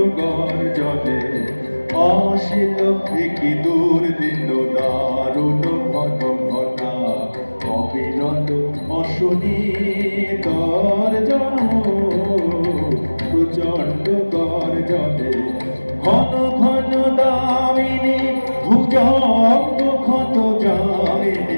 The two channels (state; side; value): inverted; both; correlation -1.00